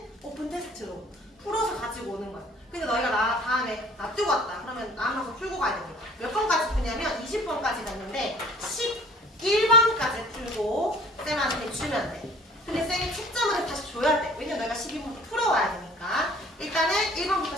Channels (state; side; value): normal; both; correlation 0.50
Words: 오픈 테스트로 풀어서 가지고 오는 거야. 근데 너희가 다음에 놔두고 왔다. 그러면 남아서 풀고 가야 됩니다. 몇 번까지 푸냐면 20번까지 갔는데 11번까지 풀고 쌤한테 주면 돼. 근데 쌤이 채점을 다시 줘야 돼. 왜냐면 너희가 12번부터 풀어와야 되니까. 일단은 1번부터